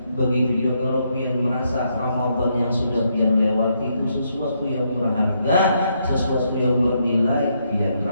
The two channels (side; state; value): both; inverted; correlation -0.77